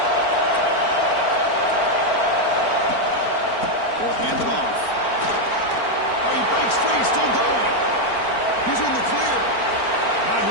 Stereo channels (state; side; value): late; right; 4.4 ms